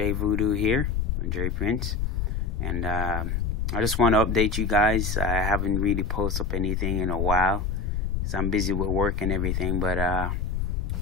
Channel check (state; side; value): noise; left; rumble, 1 dB below the sound